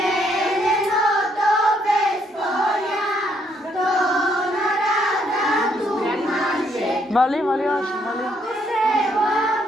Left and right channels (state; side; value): normal; both; correlation 0.71